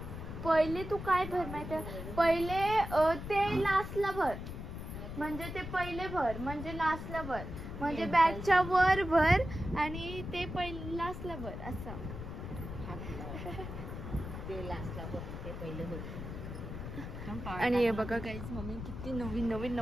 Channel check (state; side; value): noise; left; rumble, 8 dB below the sound